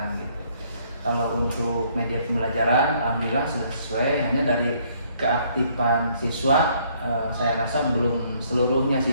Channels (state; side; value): inverted; both; correlation -0.65